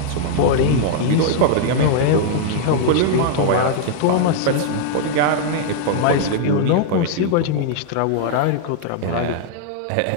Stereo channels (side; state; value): both; different; correlation -0.01